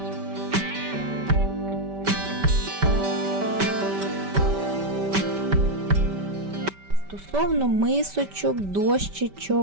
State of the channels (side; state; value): left; late; 5.1 ms